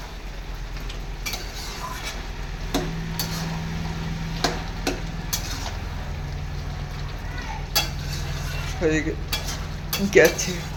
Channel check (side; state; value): both; identical; correlation 1.00